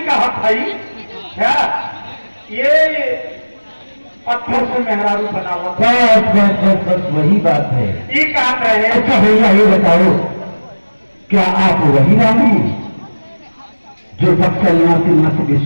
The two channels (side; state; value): both; inverted; correlation -1.00